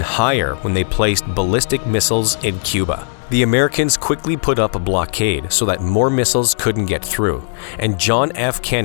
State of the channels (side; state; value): right; silent; 68 dB below the other